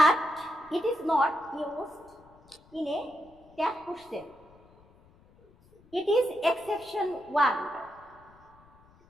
it is not used in a tag question. It is exception 1.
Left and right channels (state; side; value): noise; left; rumble, 28 dB below the sound